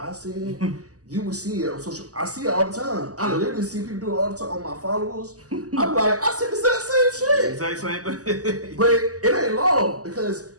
said, you will see it on social. I see it all the time. I literally see people do it all the time on my followers. I'm like, I said the same shit. Exact same thing. But it ain't long because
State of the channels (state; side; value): late; left; 0.67 ms